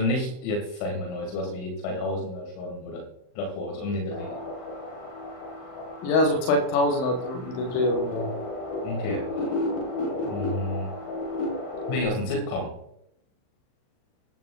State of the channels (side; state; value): right; late; 39 ms